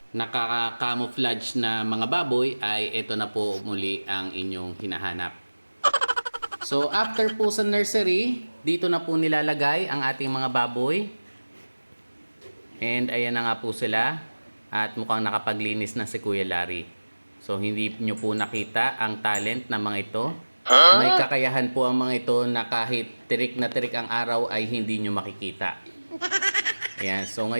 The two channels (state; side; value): inverted; both; correlation -1.00